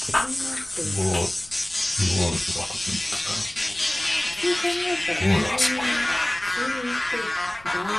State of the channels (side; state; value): left; noise; rumble, 24 dB below the sound